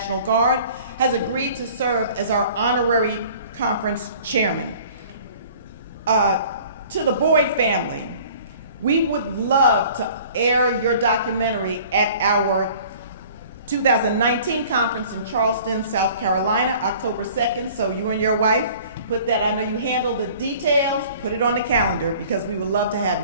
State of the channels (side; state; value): both; inverted; correlation -0.49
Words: Guard, has agreed to serve as our honorary conference chairman. To the Boyd family, we would love to air your documentary at our 2019 conference in Charleston, South Carolina, October 2nd. So you and your wife, put that, I know you handle the details, put it on the calendar because we would love to have